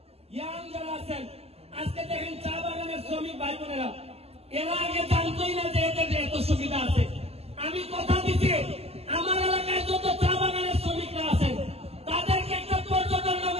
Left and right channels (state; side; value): late; left; 0.29 ms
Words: ইয়াং যারা আছেন, আজকে দেখেন চা বাগানের শ্রমিক ভাই বোনেরা, এরা আগে জানতোই না যে এদের এত সুবিধা আছে। আমি কথা দিচ্ছি, আমার এলাকায় যত চা বাগানের শ্রমিকরা আছেন তাদেরকে একটা পর্যটন